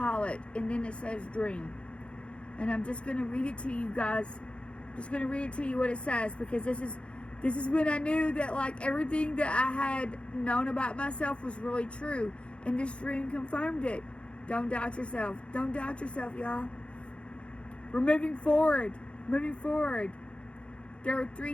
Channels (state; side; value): late; right; 0.058 ms